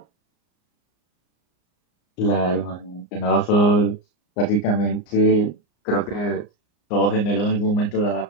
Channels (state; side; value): late; right; 34 ms